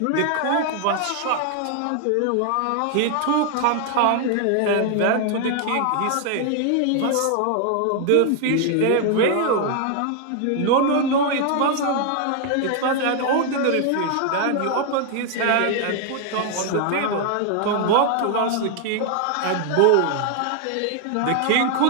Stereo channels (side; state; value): both; different; correlation 0.00